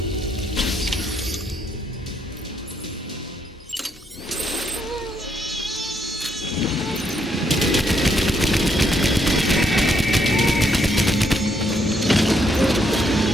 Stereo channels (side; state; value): both; normal; correlation 0.74